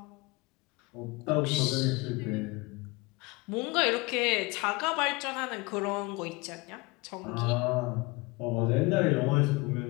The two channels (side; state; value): right; quieter; 25.2 dB